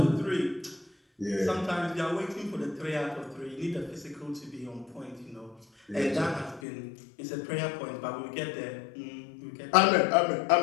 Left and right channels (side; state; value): right; drops out; at 6.6 s